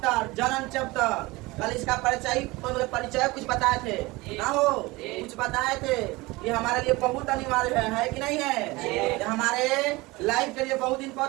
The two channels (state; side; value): quieter; left; 22.2 dB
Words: जन्म चैप्टर। कल इसका परिचय कुछ बताए थे ना हो, कुछ बताए थे। ये हमारे लिए बहुत अनिवार्य है कि नहीं है? ये हमारे लाइफ के लिए बहुत